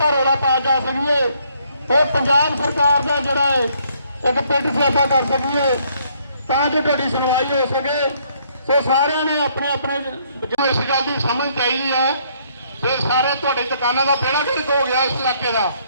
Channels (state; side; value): inverted; both; correlation -0.67